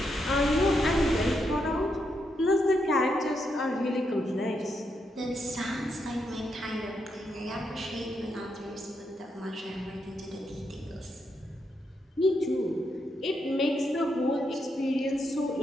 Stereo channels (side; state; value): both; normal; correlation 0.81